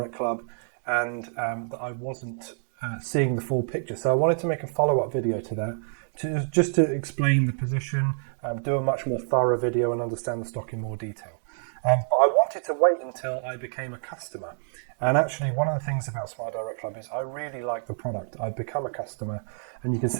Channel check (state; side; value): silent; left; digital silence